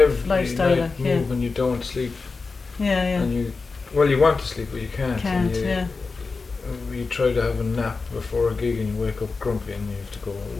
lifestyle. Night move and you don't sleep. Yeah. And you want to sleep, but you can't. You try to have a nap before a gig and you wake up grumpy and you have to go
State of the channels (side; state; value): right; quieter; 4.3 dB